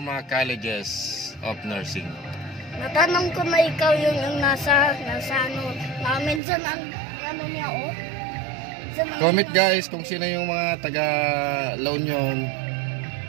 Colleges of Nursing. Natanong ko na ikaw yung nasa namin dyan ang niya Comment guys kung sino yung mga taga La Union.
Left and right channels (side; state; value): left; drops out; at 6.4 s